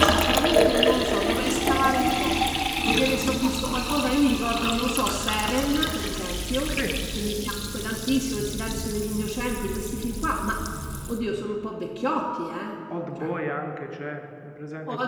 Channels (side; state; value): both; identical; correlation 1.00